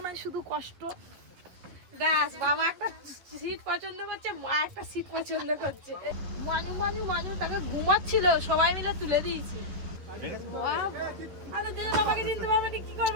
না শুধু কষ্ট। দাস বাবা একটা সিট পছন্দ করছে, মা একটা সিট পছন্দ করছে। মানু মানু মানু তাকে ঘুমাচ্ছিল, সবাই মিলে তুলে দিয়েছি। আরে দে বাবাকে চিনতে পারবে না, কি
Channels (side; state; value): left; late; 11 ms